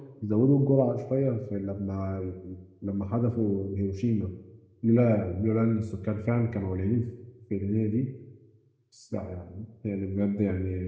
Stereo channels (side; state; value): both; identical; correlation 1.00